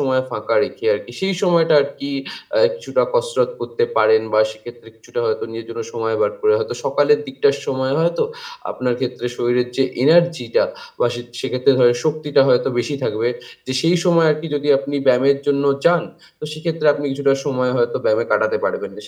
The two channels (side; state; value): both; identical; correlation 1.00